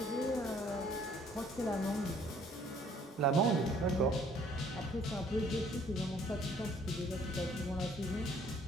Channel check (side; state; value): both; normal; correlation 0.60